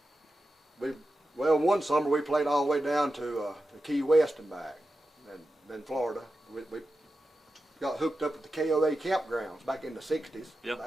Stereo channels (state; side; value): normal; both; correlation 0.91